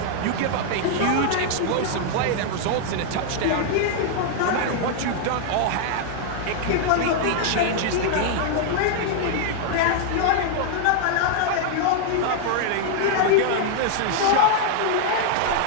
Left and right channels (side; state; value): both; different; correlation 0.00